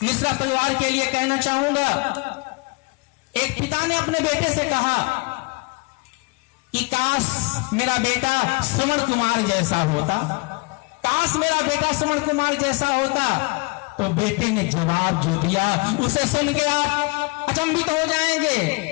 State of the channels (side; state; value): right; quieter; 28.3 dB